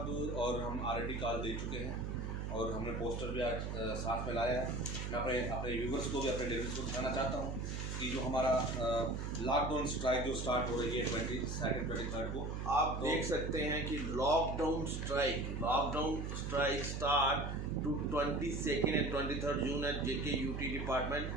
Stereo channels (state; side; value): noise; right; hum, 3 dB below the sound